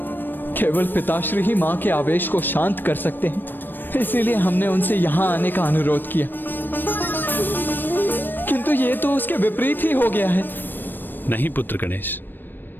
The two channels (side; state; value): right; late; 0.093 ms